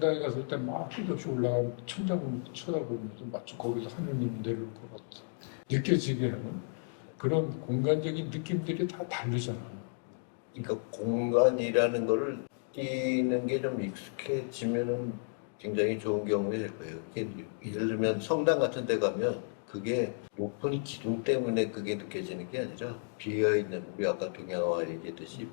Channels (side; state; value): right; silent; digital silence